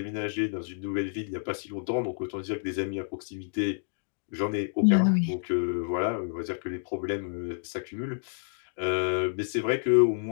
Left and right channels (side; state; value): right; silent; digital silence